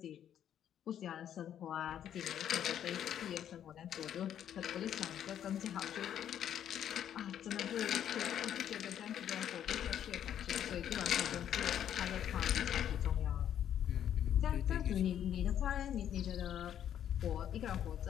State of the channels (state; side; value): quieter; right; 10.0 dB